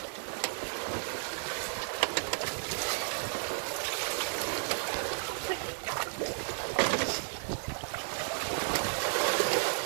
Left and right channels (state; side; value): silent; left; 56 dB below the other